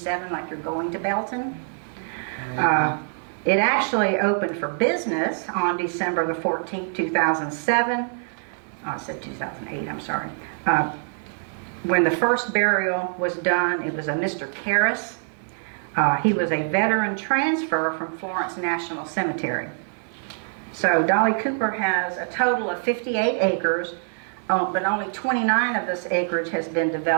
like you're going to Belton. It actually opened for business on December the 14th, 2007. Oh, I said 2008, I'm sorry. When the first burial was done, it was a Mr. Karras. He was a veteran transfer from Florence National Cemetery. So Dolly Cooper has a total of 58 acres, but only 29 of this acreage has been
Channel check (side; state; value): left; silent; digital silence